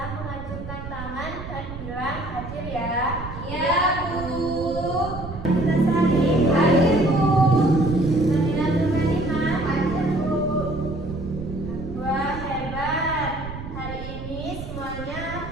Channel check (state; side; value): noise; right; rumble, 10 dB below the sound